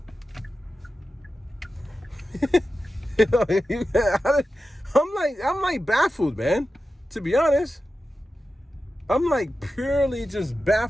I'm like baffled, man. To be honest, I'm like purely just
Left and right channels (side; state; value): both; normal; correlation 0.92